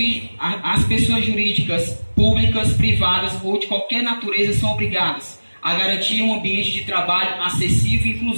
jurídicas, públicas, privadas ou de qualquer natureza são obrigadas a garantir um ambiente de trabalho acessível e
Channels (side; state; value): both; inverted; correlation -1.00